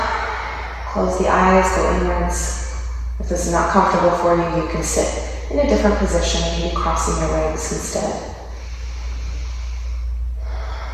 Close the eyes, go inwards. If this is not comfortable for you, you can sit in a different position, maybe crossing your legs instead.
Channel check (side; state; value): both; identical; correlation 1.00